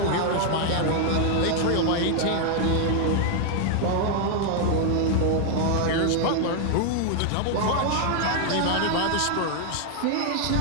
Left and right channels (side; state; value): both; different; correlation 0.00